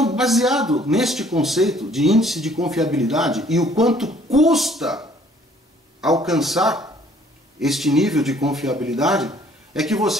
baseado neste conceito de índice de confiabilidade e o quanto custa alcançar este nível de confiabilidade, é que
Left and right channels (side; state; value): both; normal; correlation 0.59